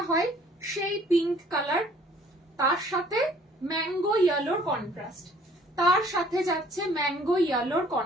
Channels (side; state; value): both; normal; correlation 0.57